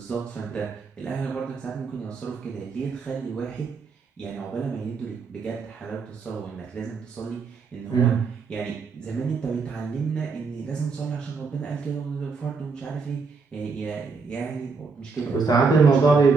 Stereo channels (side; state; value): left; quieter; 4.8 dB